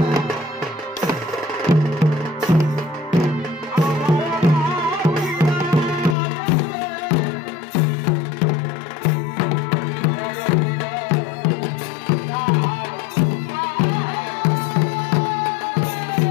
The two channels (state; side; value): drops out; right; at 6.2 s